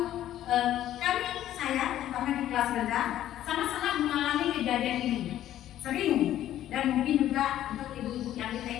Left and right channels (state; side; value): quieter; right; 12.4 dB